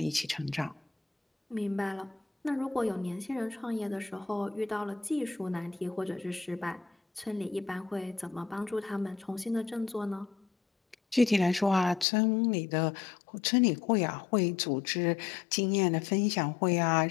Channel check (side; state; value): right; drops out; at 12.1 s